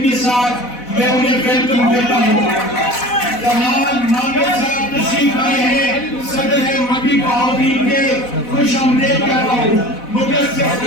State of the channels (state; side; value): late; right; 4.1 ms